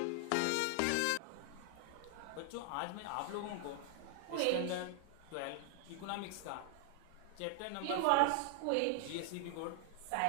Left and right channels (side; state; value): both; different; correlation 0.00